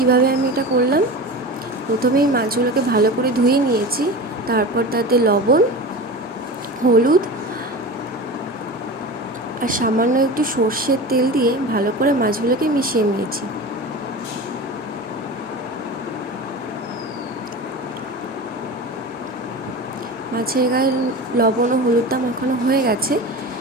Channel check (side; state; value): both; normal; correlation 0.30